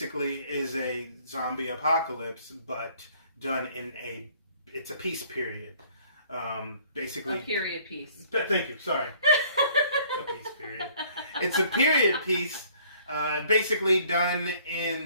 is a zombie apocalypse, but done in it's a peace period. Basically, a period piece. Thank you. Sorry, a peace period. It's a period piece, basically done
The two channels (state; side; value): inverted; both; correlation -0.58